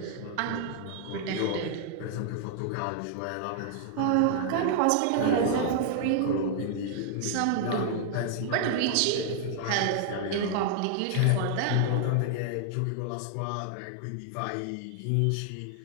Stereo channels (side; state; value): both; different; correlation -0.01